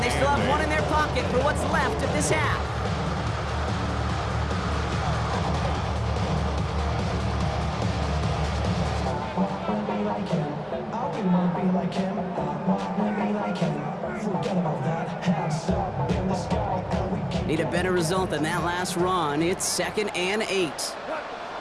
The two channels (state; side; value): identical; both; correlation 1.00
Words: they still have one in their pocket for what's left of this half. Need a better result than that last run. It's 2nd and 8.